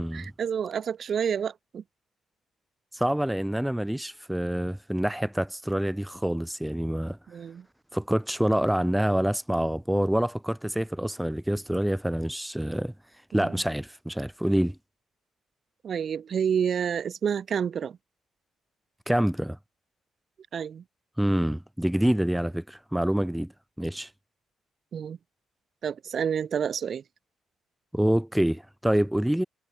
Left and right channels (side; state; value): both; normal; correlation 0.96